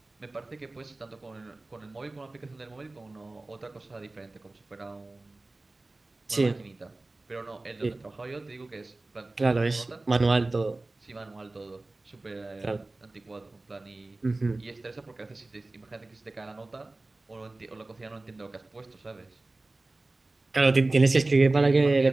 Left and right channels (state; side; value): quieter; left; 3.0 dB